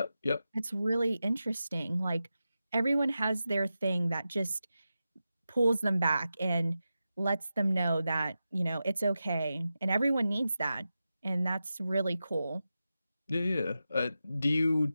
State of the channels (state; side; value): inverted; both; correlation -0.91